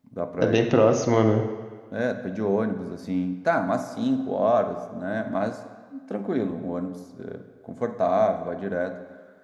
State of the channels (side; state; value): both; identical; correlation 1.00